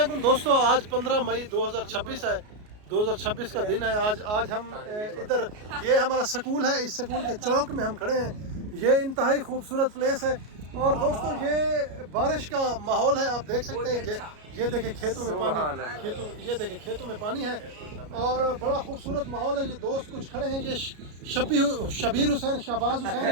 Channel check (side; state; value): left; late; 33 ms